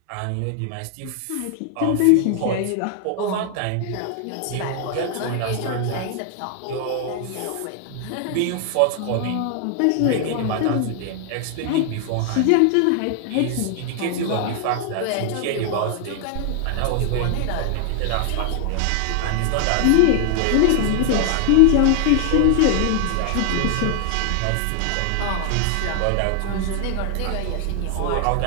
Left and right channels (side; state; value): both; different; correlation 0.00